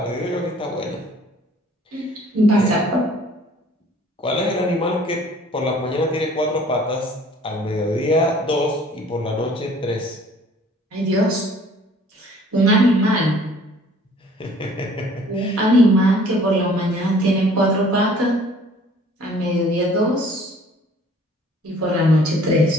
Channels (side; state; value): both; normal; correlation 0.54